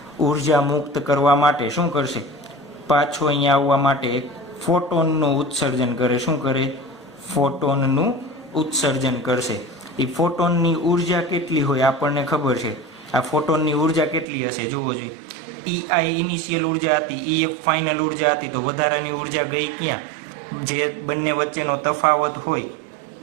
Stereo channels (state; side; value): drops out; left; at 14.2 s